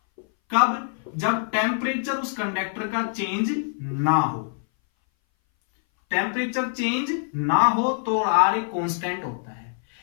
कब? जब टेम्परेचर उस कंडक्टर का चेंज ना हो, टेम्परेचर चेंज ना हो तो आर एक कांस्टेंट होता है।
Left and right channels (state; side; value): silent; right; 59 dB below the other